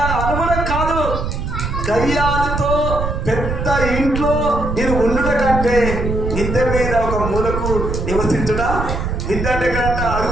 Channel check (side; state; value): right; noise; rumble, 3 dB below the sound